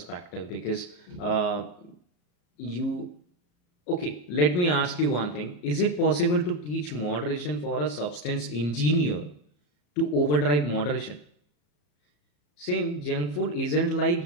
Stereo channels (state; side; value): late; right; 34 ms